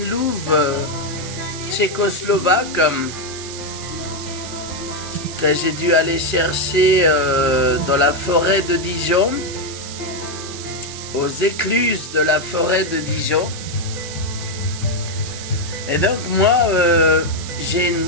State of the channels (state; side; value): noise; right; hiss, 11 dB below the sound